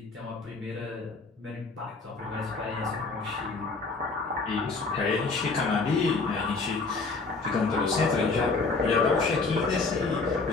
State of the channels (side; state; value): right; quieter; 4.0 dB